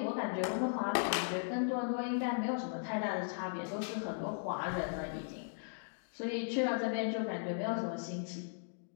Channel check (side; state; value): right; silent; digital silence